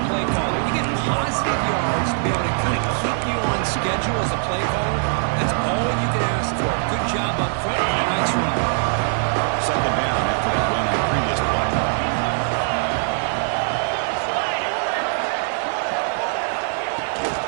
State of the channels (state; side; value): silent; left; 62 dB below the other